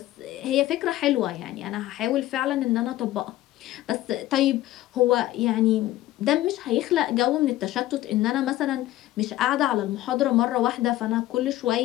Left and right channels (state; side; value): quieter; right; 15.2 dB